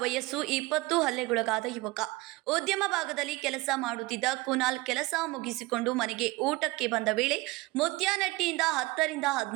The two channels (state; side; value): quieter; left; 21.4 dB